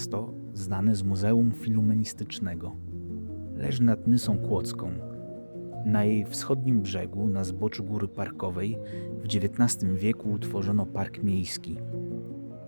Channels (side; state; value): both; inverted; correlation -1.00